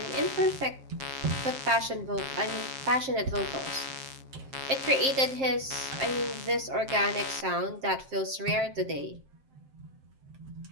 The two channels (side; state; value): left; late; 7.5 ms